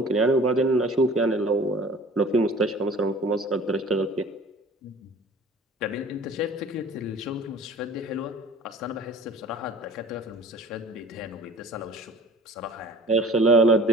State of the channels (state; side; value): normal; both; correlation 0.46